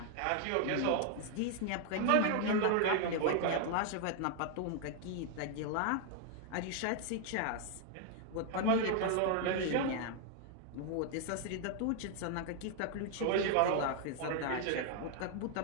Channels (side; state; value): both; different; correlation 0.00